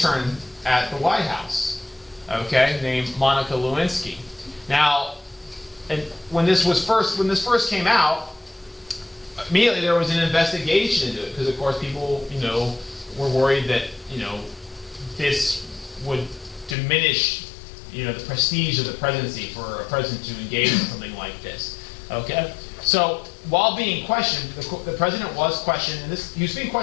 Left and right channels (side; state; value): right; drops out; at 16.8 s